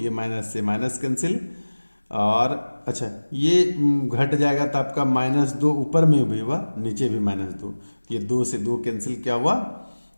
माइनस से माइनस कैंसिल और अच्छा ये घट जाएगा तो आपका -2 ऊपर में भी हुआ नीचे भी -2, ये 2 से 2 कैंसिल क्या हुआ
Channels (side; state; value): both; inverted; correlation -1.00